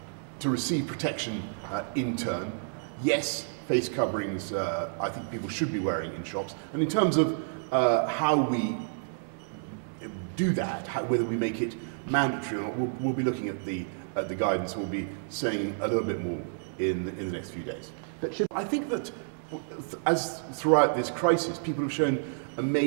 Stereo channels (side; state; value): left; silent; 58 dB below the other